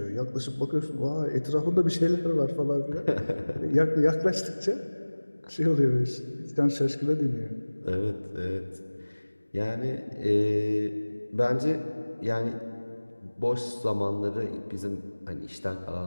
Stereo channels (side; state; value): both; inverted; correlation -1.00